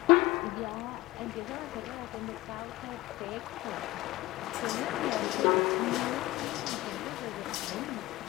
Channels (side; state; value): right; quieter; 18.6 dB